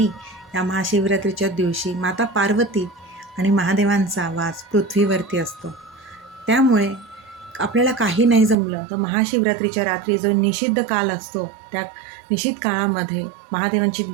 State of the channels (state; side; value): drops out; left; at 8.6 s